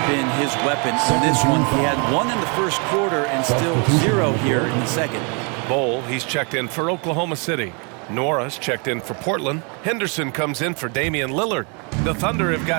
been his weapon in this one. He had 1 in the first quarter and still 0 here in the second. Bol, he's checked in for Oklahoma City. Nora's checked in for Portland. Henderson comes in for Damian Lillard. The Thunder have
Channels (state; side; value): quieter; left; 34.8 dB